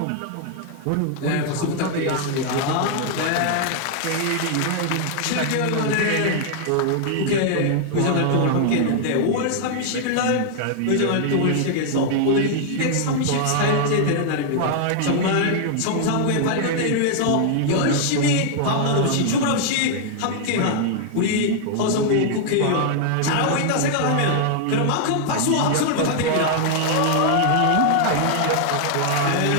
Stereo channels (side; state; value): both; different; correlation -0.01